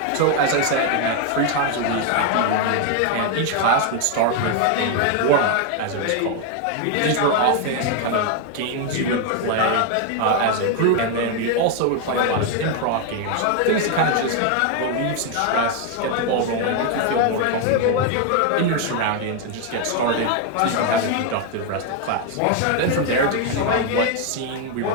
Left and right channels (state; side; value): different; both; correlation 0.01